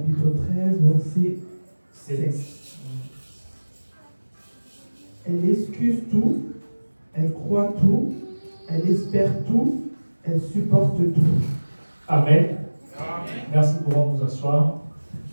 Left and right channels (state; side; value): inverted; both; correlation -1.00